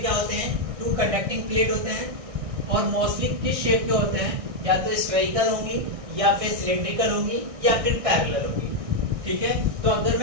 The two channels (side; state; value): left; late; 1.6 ms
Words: क्या होते हैं, टू कंडक्टिंग प्लेट होते हैं और मोस्टली किस शेप के होते हैं, या तो स्फेरिकल होंगी या फिर सिलिंड्रिकल होंगी या फिर पैरेलल होंगी। ठीक है, तो अगर